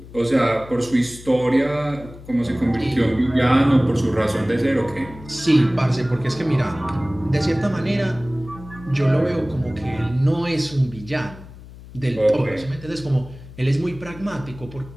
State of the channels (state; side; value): noise; left; hum, 17 dB below the sound